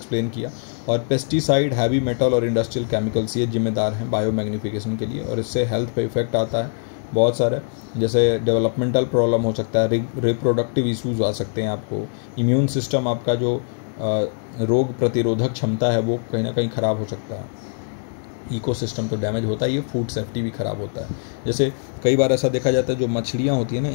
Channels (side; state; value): right; silent; 64 dB below the other